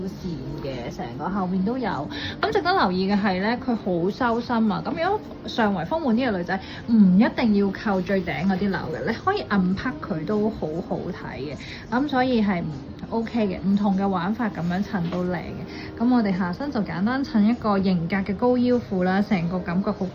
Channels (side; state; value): both; identical; correlation 1.00